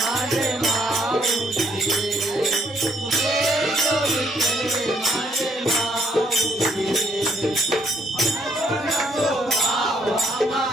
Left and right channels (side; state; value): both; normal; correlation 0.70